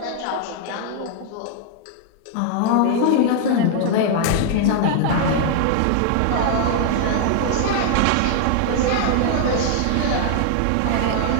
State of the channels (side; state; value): both; different; correlation 0.00